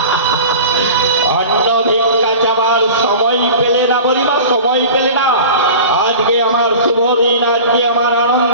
অন্ন ভিক্ষা চাওয়ার সময় পেলে না মণিমা, সময় পেলে না। আজকে আমার শুভ দিন, আজকে আমার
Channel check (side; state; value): both; inverted; correlation -0.37